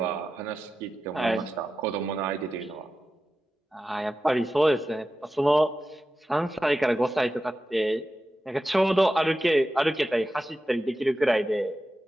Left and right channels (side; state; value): both; normal; correlation 0.92